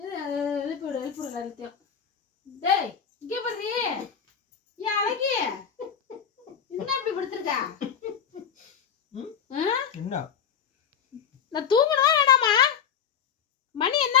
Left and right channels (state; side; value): quieter; right; 7.8 dB